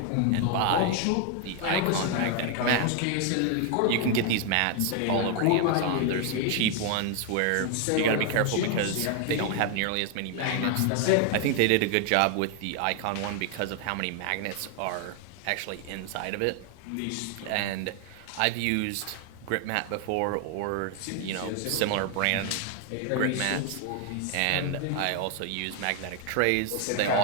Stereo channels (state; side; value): different; both; correlation 0.00